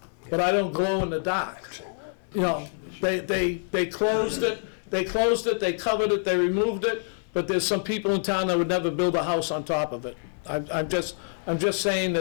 but I don't glow in the dark. You know, they closed it, they covered it, they removed it, but there's some people in town that would never build a house on top of it. I'm just saying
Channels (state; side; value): silent; right; 61 dB below the other